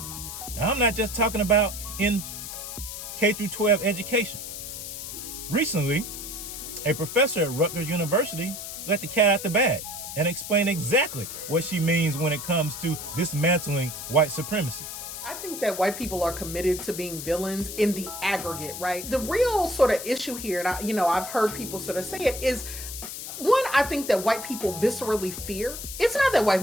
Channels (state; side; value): noise; left; hiss, 8 dB below the sound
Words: Now, I'm not just talking about in K through 12 education. Recently, a professor at Rutgers University let the cat out the bag and explained exactly what she means when it comes to dismantling white supremacy. I think that white people are committed to being villains in the aggregate, right? The real sort of issue here, and I've heard people sort of say it, is one, I think that white people viscerally fear. It's not that white